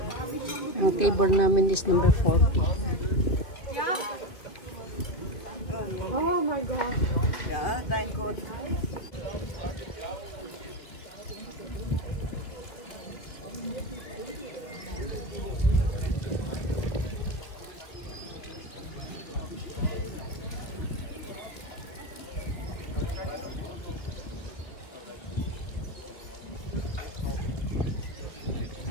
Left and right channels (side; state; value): right; late; 2.3 ms